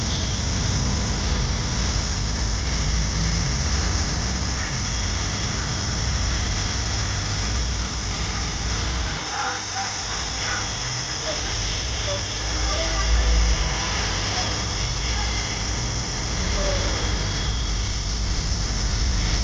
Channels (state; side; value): identical; both; correlation 1.00